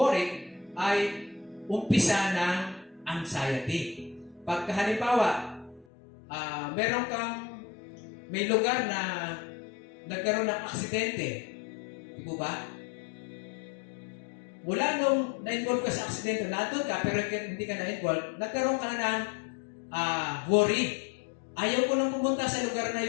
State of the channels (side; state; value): right; drops out; at 5.9 s